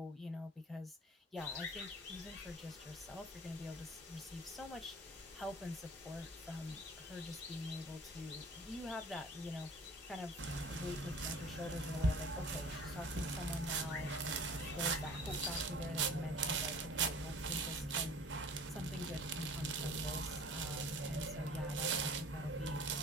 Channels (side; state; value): both; normal; correlation 0.46